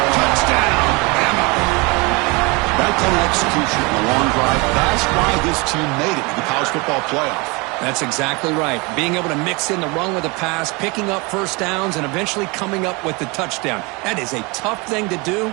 Touchdown, Bama. That kind of execution in a long drive, that's why this team made it to the college football playoff. That's exactly right. Being able to mix in the run with the pass, picking up first downs, and eventually coming up with the touchdown. That is a tough thing to do,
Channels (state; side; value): quieter; left; 27.2 dB